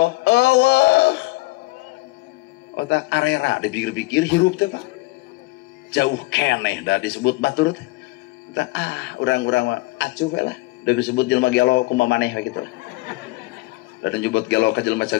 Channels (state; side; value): quieter; right; 22.1 dB